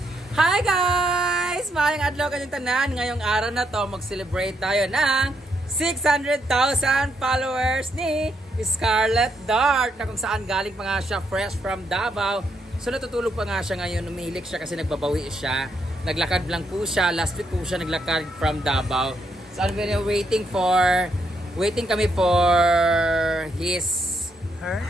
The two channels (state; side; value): normal; both; correlation 0.77